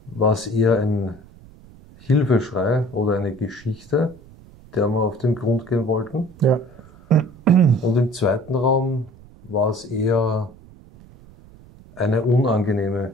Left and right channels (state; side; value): noise; right; rumble, 23 dB below the sound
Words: war es eher ein Hilfeschrei oder eine Geschichte, der wir auf den Grund gehen wollten. Ja. Und im zweiten Raum war es eher eine unangenehme